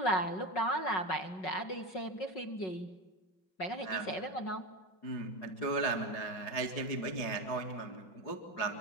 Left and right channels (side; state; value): right; late; 5.4 ms